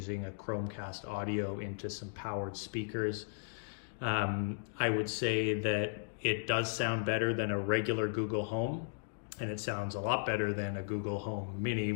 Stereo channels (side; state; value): right; silent; digital silence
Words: a Chromecast audio into some powered speakers. I would say that it does sound better than a regular Google Home, and it sounds a lot better than a Google Home Mini,